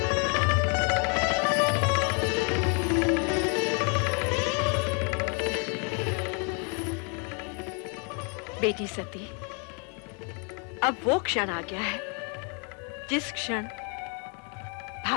बेटी सती, अब वो क्षण आ गया है जिस क्षण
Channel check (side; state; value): right; quieter; 37.2 dB